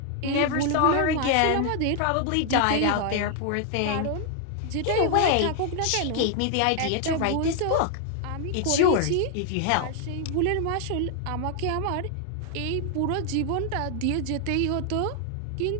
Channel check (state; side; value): different; both; correlation 0.00